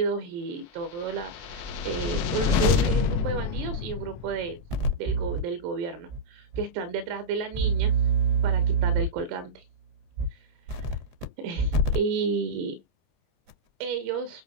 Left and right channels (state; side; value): late; left; 22 ms